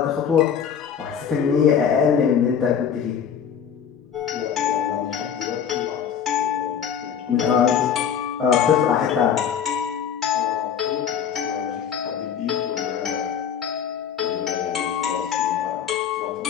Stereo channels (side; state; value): right; quieter; 8.0 dB